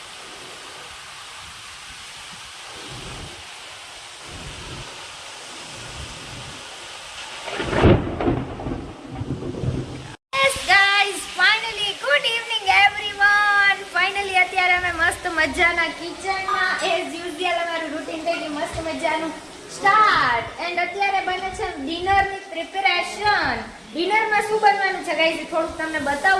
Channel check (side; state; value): both; identical; correlation 1.00